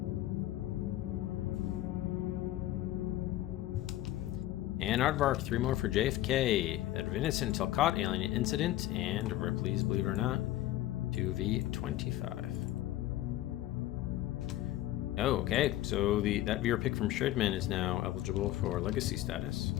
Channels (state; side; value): quieter; right; 14.7 dB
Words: And Aardvark, 3 more for JFK. Adventus Until Caught, Alien Incident, and Ripley's Believe It or Not to V25. Oh, okay. So that viewer pick from Shredman is now eligible for Legacy status.